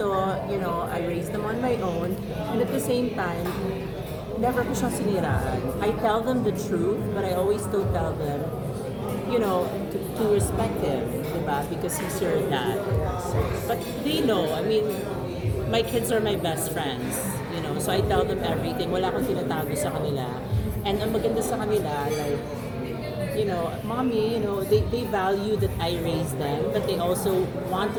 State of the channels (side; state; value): both; identical; correlation 1.00